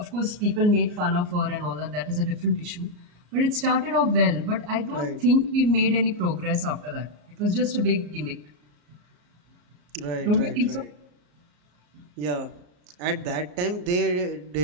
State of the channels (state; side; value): late; left; 34 ms